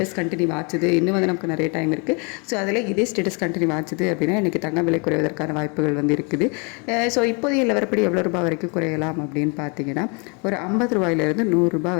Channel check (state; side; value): quieter; right; 33.5 dB